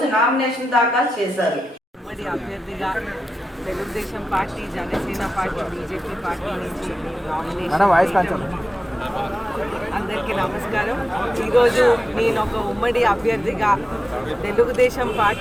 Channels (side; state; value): both; normal; correlation 0.91